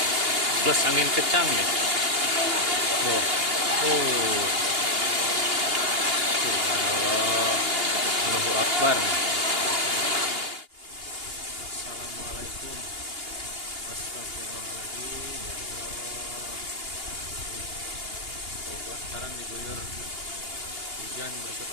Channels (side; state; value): left; late; 2.8 ms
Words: plus angin kencang nih. Tuh. Oh. Subhanallah. Allahu Akbar. Assalamualaikum. Astagfirullahaladzim. Ya Allah. Bogor sekarang diguyur hujan berset